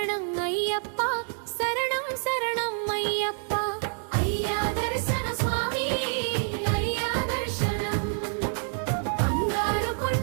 అయ్యప్ప శరణం శరణం అయ్యప్ప అయ్యా దర్శన స్వామి అయ్యా దర్శనం బంగారు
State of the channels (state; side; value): silent; left; 60 dB below the other